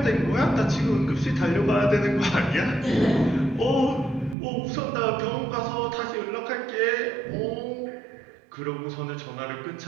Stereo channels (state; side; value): drops out; left; at 4.4 s